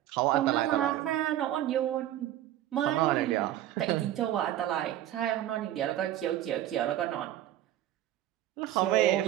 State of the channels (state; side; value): quieter; left; 13.0 dB